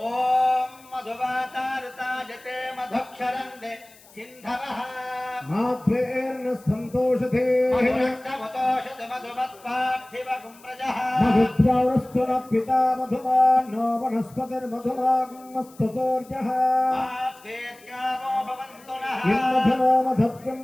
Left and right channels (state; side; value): noise; left; hiss, 25 dB below the sound